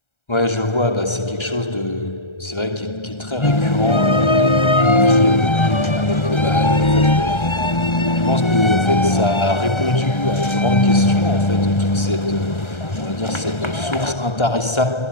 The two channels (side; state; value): right; late; 1.3 ms